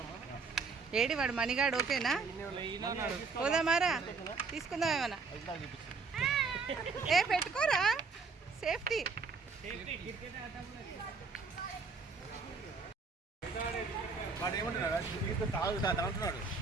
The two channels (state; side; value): quieter; left; 4.6 dB